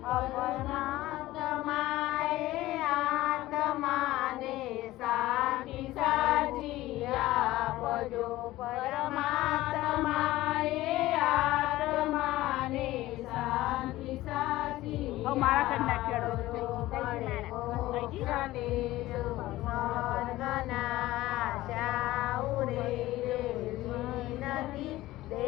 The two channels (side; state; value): right; quieter; 16.9 dB